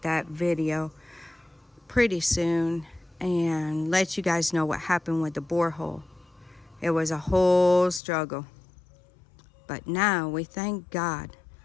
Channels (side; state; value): right; drops out; at 8.0 s